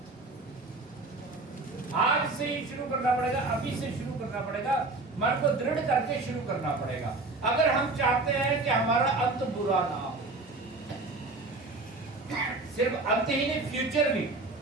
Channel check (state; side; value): quieter; left; 3.3 dB